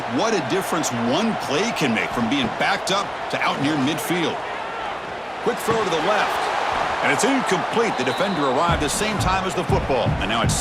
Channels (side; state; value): both; identical; correlation 1.00